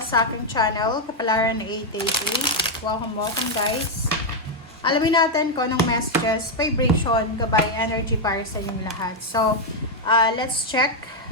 aking channel, Kapalaran 888. Welcome guys. Alamin natin kung anong messages, vibration, gabay, energy para sa inyong lahat. So, let's check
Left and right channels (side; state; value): both; normal; correlation 0.01